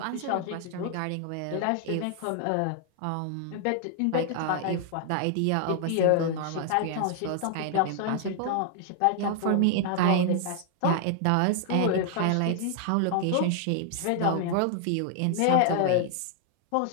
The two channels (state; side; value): different; both; correlation 0.00